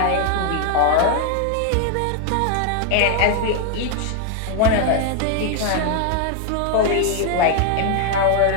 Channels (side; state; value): both; different; correlation 0.00